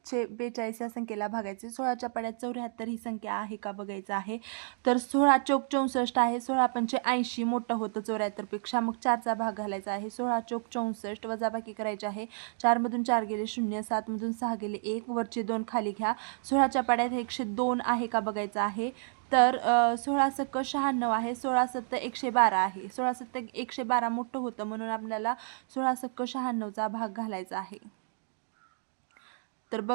या संख्येला भागायचे। 16च्या पाड्यात 74 ही संख्या आहे का बघायचं आहे। तर 16 चौक 64 आहे। 16 पंचे 80 मोठं होतं 74 पेक्षा, मग 4चा भाग घालायचा आहे। 16 चौक 64, वजाबाकी करायची आहे। 4 मधून 4 गेले, 0। 7 मधून 6 गेले, 1। वरचे 2 खाली घ्या। 16च्या पाड्यात 102 आहे का बघायचं आहे। तर 16 सक 96 आहे। 16 7 112 आहे। 16 7 112 मोठं होतं म्हणून आपल्याला 16 सक 96चा भाग घालायचा आहे। तर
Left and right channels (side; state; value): left; silent; digital silence